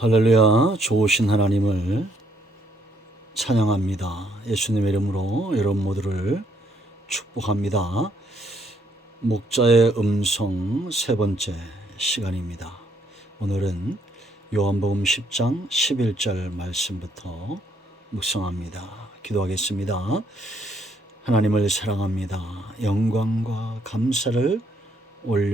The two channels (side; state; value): both; normal; correlation 0.70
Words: 할렐루야. 좋으신 하나님을 찬양합니다. 예수님의 이름으로 여러분 모두를 축복합니다. 목자의 음성 세 번째 시간입니다. 오늘은 요한복음 10장 11절 말씀부터 묵상합니다. 기도하겠습니다. 하나님을 사랑합니다. 영광과 감사를